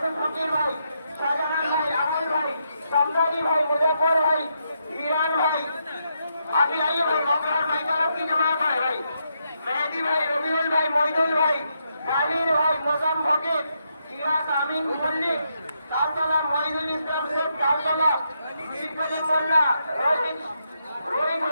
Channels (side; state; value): both; inverted; correlation -0.80